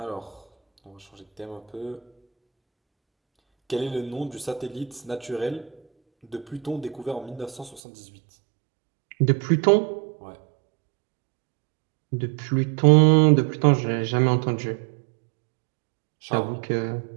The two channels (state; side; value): drops out; left; at 7.8 s